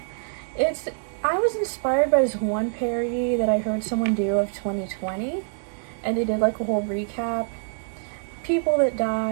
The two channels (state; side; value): silent; left; 62 dB below the other